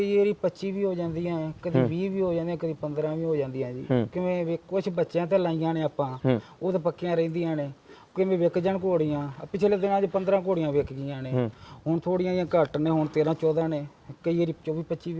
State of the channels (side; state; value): both; identical; correlation 1.00